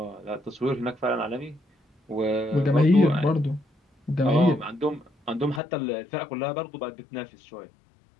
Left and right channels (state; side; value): drops out; right; at 5.6 s